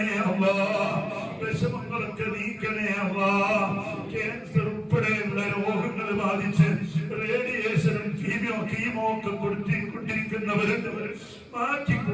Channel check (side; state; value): both; identical; correlation 1.00